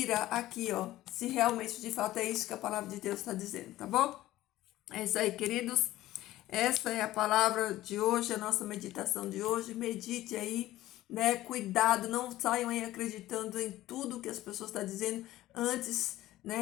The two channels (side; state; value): right; quieter; 15.6 dB